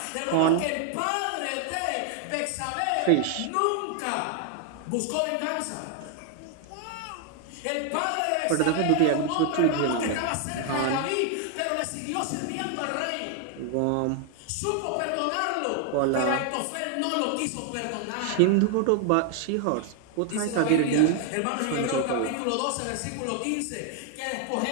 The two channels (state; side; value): different; both; correlation 0.00